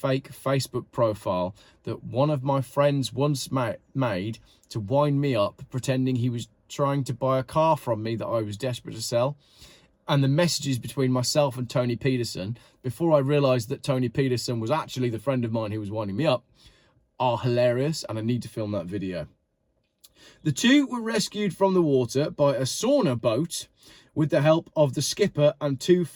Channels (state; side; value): identical; both; correlation 1.00